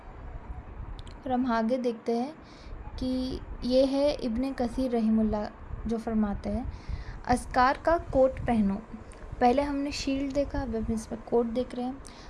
اور ہم آگے دیکھتے ہیں کہ یہ ہے ابن کثیر رحمہ اللہ جو فرماتے ہیں اذکار کا کوٹ پہنو. پہلے ہم نے شیلڈ دیکھا، اب ہم اس میں کوٹ دیکھ رہے ہیں،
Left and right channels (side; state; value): both; identical; correlation 1.00